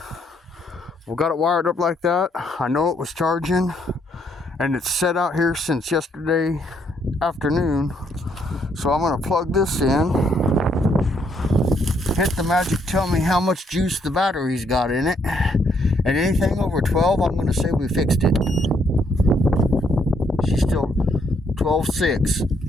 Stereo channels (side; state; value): both; normal; correlation 0.71